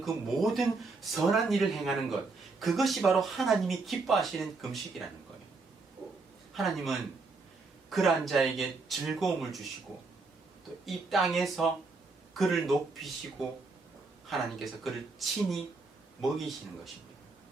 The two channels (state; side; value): quieter; left; 3.9 dB